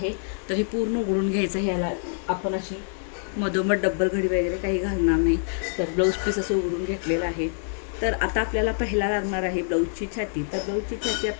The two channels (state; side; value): silent; right; 61 dB below the other